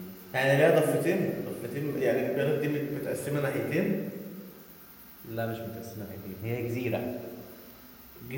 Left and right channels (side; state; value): both; identical; correlation 1.00